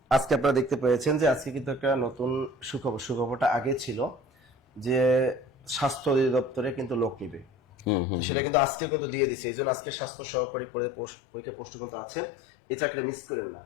আজকে আপনারা দেখতে পেয়েছেন যে আজকে কিন্তু একটা নতুন সুখবর। সুখবরটা আগে ছিল যে স্বাস্থ্য অধিদপ্তরে কিন্তু লোক নিবে, সেটা কিন্তু আজকেও কিন্তু দিয়ে দিচ্ছে। এই জন্য আজকে স্বাস্থ্য সহকারী পরীক্ষা প্রশ্ন কিন্তু আছে, এই চাকরিটা মিস করেন না।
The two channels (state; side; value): drops out; right; at 8.0 s